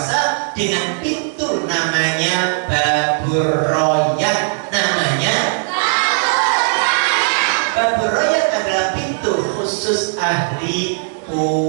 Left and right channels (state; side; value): silent; left; 68 dB below the other